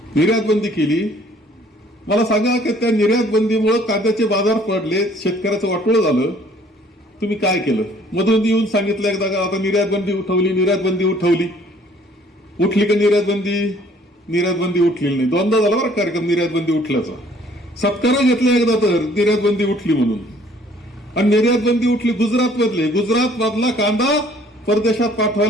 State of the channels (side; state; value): both; normal; correlation 0.58